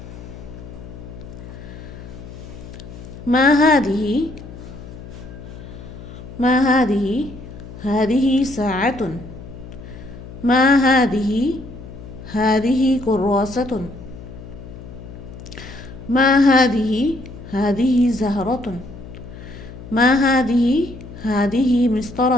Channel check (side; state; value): left; noise; hum, 14 dB below the sound